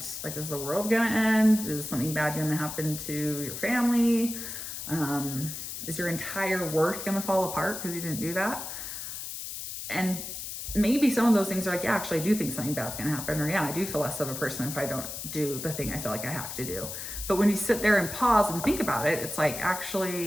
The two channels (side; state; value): left; noise; hiss, 7 dB below the sound